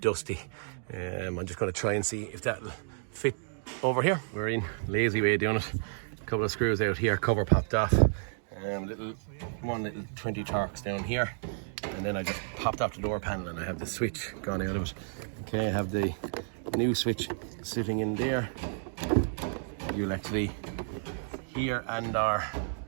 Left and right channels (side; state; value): left; silent; digital silence